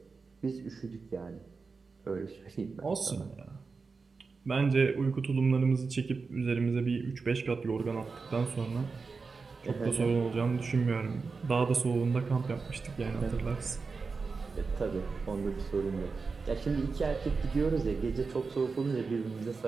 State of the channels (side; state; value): left; quieter; 4.6 dB